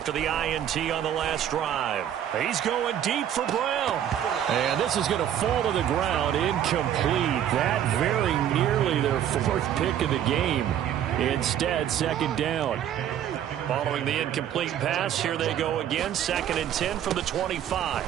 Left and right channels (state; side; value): quieter; left; 10.3 dB